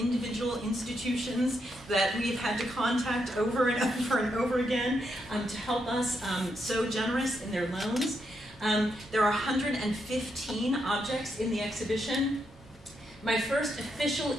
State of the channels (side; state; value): both; normal; correlation 0.81